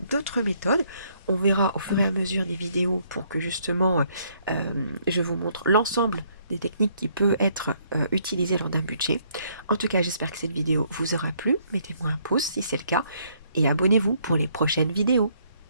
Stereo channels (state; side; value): inverted; both; correlation -0.68